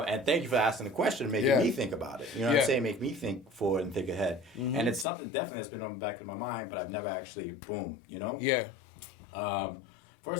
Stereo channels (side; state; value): right; drops out; at 5.1 s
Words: thank you for asking the question, making me think about it. You know what I'm saying? Make me think forward and think ahead. And it's something definitely that's been on the back of my mind, but I've never actually, boom, Yeah.